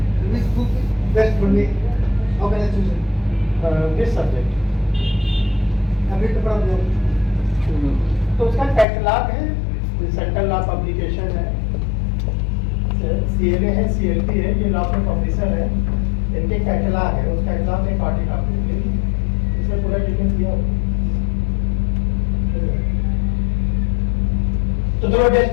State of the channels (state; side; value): drops out; right; at 8.8 s